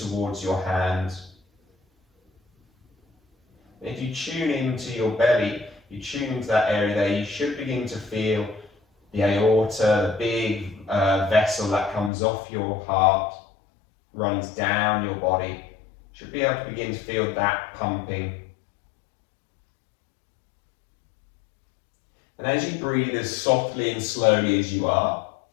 your hands. If you tune into your belly, you tune into that area there, you should begin to feel the aorta, the big vessel that comes off your heart, runs down your body. Should be able to begin to feel that pumping. And as you breathe as softly and slowly as you are,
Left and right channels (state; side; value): drops out; right; at 12.1 s